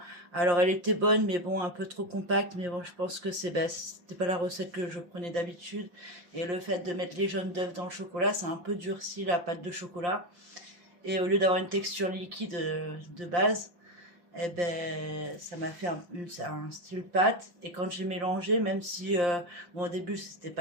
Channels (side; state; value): left; late; 5.7 ms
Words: Alors elle était bonne, mais bon, un peu trop compacte. Mais bon, je pense que c'était pas la recette que je prenais d'habitude. Et le fait de mettre les jaunes d'œufs dans le chocolat, ça a un peu durci la pâte de chocolat. Et au lieu d'avoir une texture liquide de base, eh ben, ça m'a fait un style pâte. Et quand j'ai mélangé, même si, au début, c'était